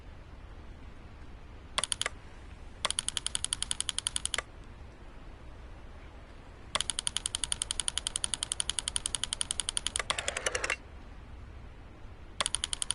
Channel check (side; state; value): both; identical; correlation 1.00